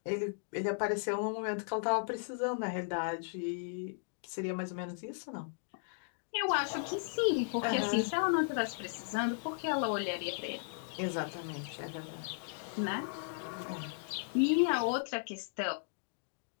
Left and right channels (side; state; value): right; silent; digital silence